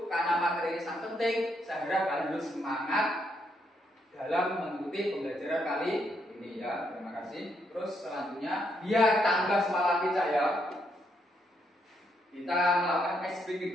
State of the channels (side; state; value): both; normal; correlation 0.76